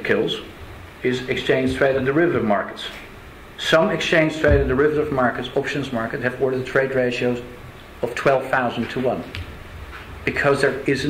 kills is exchange-traded derivative markets. Some exchange-traded derivative markets, options market, have order-to-trade ratios of 12,000 to 1 because there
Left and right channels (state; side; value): identical; both; correlation 1.00